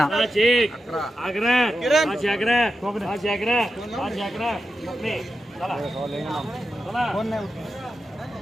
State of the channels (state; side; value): normal; both; correlation 0.90